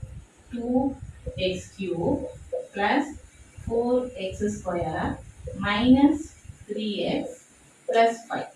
2x cube plus 4x square minus 3x plus 5.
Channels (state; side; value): identical; both; correlation 1.00